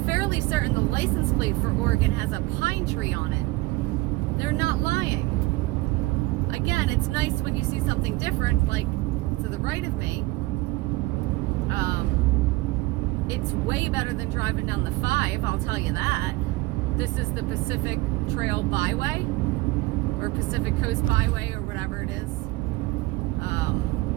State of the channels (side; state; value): left; quieter; 20.8 dB